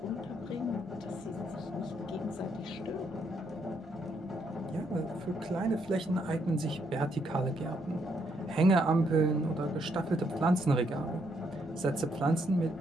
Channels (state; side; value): normal; both; correlation 0.74